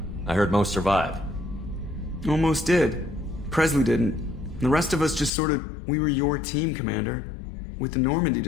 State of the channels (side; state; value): right; drops out; at 5.3 s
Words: I heard most survived. Almost did. Presley didn't. The rest of us just we were your team, Commander. With the Normandy